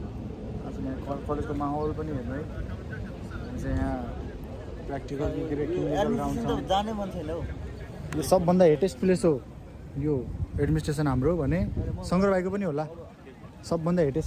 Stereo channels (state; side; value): identical; both; correlation 1.00